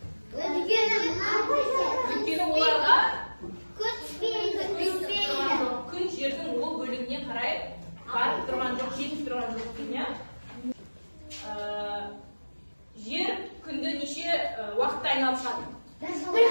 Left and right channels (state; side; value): inverted; both; correlation -1.00